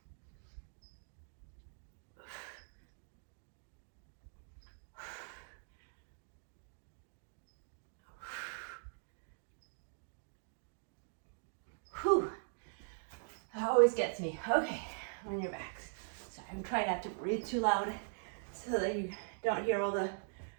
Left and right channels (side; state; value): left; silent; digital silence